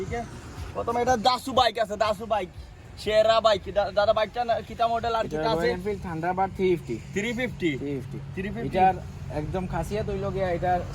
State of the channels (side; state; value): both; identical; correlation 1.00